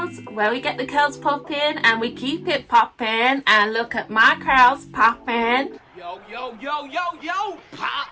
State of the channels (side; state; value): both; identical; correlation 1.00